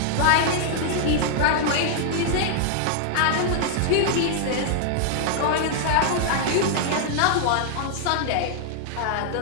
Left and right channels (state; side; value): different; both; correlation -0.01